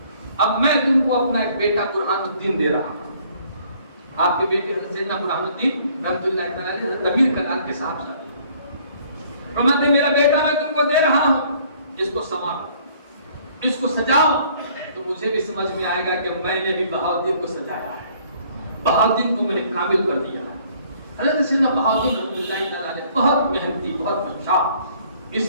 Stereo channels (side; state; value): both; inverted; correlation -0.60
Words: اب میں تم کو اپنا ایک بیٹا برہان الدین دے رہا ہوں، آپ کے بیٹے حضرت سیدنا برہان الدین رحمۃ اللہ تعالیٰ علیہ حضرت امیر کلال کے صاحب شادی، فرماتے میرا بیٹا میں تم کو دے رہا ہوں، اس کو سنوارو، اس کو سجاؤ، تو مجھے بھی سمجھ میں آئے گا کہ میں نے بھی بہاؤالدین کو سجایا ہے، بہاؤالدین کو میں نے کامل کر دیا ہے۔ حضرت سیدنا بہاؤالدین رحمۃ اللہ تعالیٰ علیہ بہت محنتی، بہت اچھا،